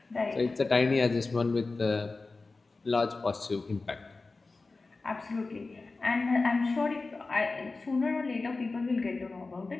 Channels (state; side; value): quieter; right; 3.7 dB